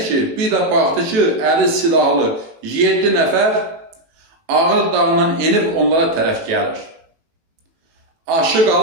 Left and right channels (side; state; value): left; late; 18 ms